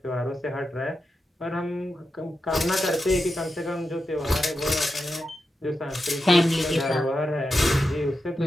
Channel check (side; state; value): both; normal; correlation 0.89